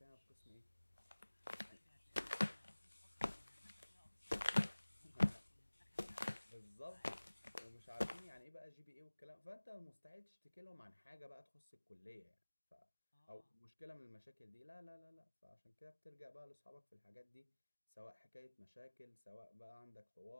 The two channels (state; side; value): inverted; both; correlation -1.00